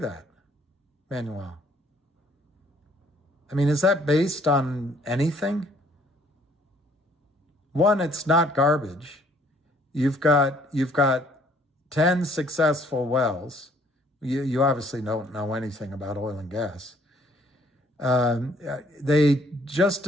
Manuel? I mean, is that based on anything? One, it's not garbage. You've got 10 successful wells. You obviously don't know anything about oil and gas. They just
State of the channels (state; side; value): normal; both; correlation 0.62